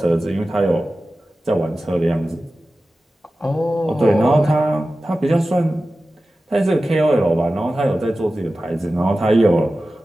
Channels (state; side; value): normal; both; correlation 0.95